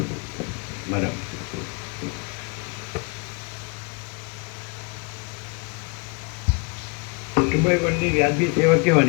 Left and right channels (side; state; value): right; quieter; 32.2 dB